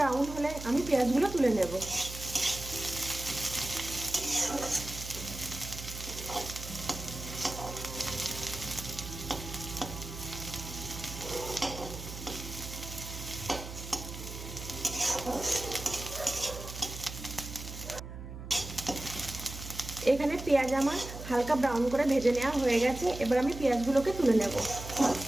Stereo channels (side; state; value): right; noise; hum, 10 dB below the sound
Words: হলে আমি পেঁয়াজগুলো তুলে নেব। এখানে পেঁয়াজ আমার হালকা ব্রাউন করে ভেজে নেওয়া হয়ে গেছে, এবার আমি পেঁয়াজগুলোকে তুলে নেব।